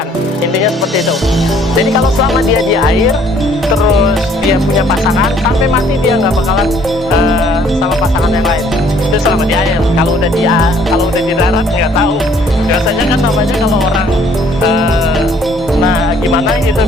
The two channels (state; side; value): normal; both; correlation 0.61